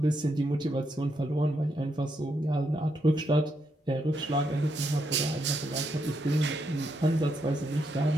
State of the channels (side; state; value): both; normal; correlation 0.79